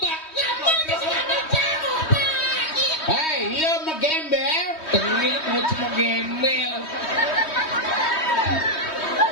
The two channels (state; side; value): late; right; 3.2 ms